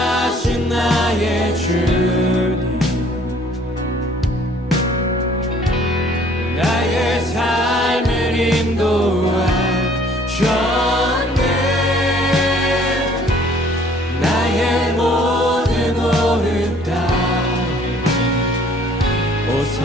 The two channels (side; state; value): both; normal; correlation 0.57